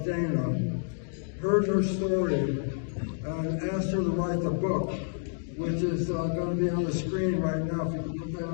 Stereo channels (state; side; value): silent; right; digital silence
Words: Dana, heard her story and asked her to write the book, which is going to be on the screen right now. If you can put